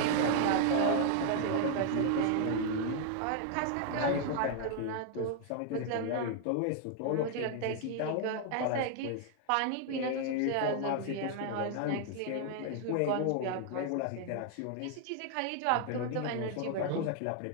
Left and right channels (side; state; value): both; different; correlation 0.00